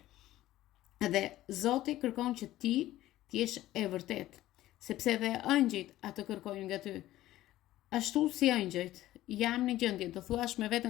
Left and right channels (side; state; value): right; quieter; 15.1 dB